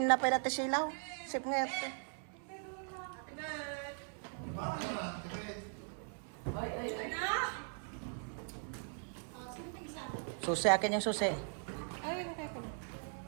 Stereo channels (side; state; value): left; silent; 51 dB below the other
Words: na pala ti silaw. Sip nga ito. Susi akin yung susi.